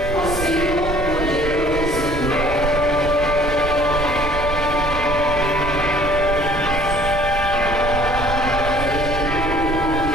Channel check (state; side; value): noise; right; rumble, 6 dB below the sound